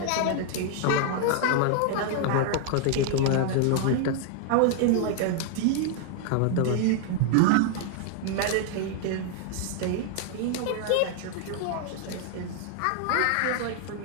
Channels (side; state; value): both; different; correlation 0.00